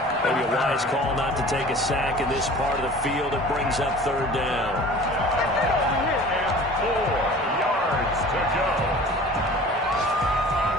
Maybe a wise call not to take a sack in this part of the field. It brings up 3rd down. And 4 yards to go.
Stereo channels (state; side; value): normal; both; correlation 0.43